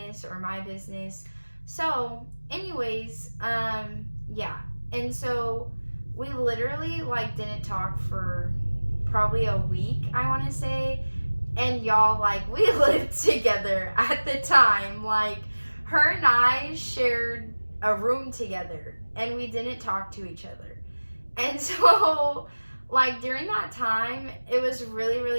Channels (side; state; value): both; inverted; correlation -1.00